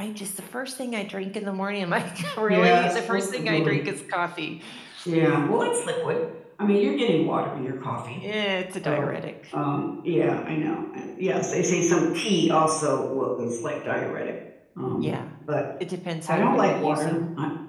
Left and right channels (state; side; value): identical; both; correlation 1.00